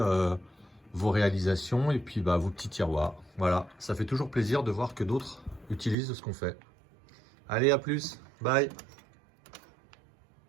vos réalisations et puis vos petits tiroirs. Voilà, ça fait toujours plaisir de voir que d'autres utilisent ce qu'on fait. Allez, à plus, bye!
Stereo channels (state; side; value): drops out; left; at 6.0 s